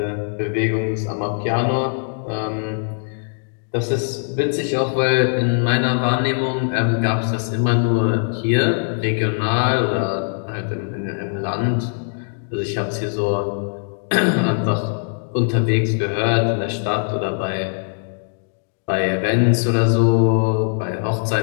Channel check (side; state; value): right; silent; digital silence